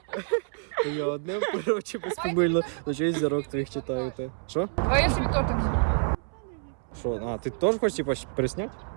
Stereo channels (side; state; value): left; silent; 60 dB below the other